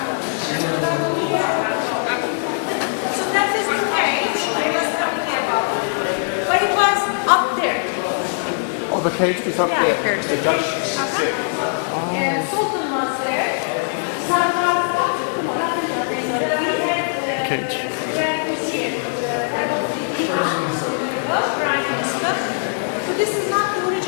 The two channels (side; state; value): right; silent; 65 dB below the other